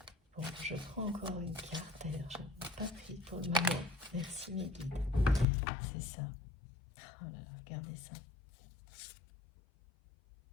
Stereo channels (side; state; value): right; drops out; at 5.5 s